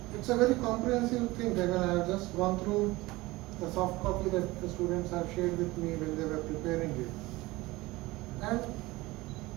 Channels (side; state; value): left; quieter; 20.4 dB